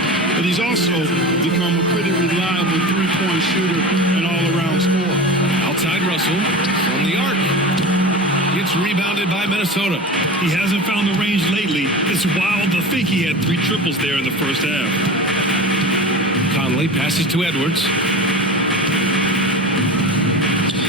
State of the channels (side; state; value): both; normal; correlation 0.30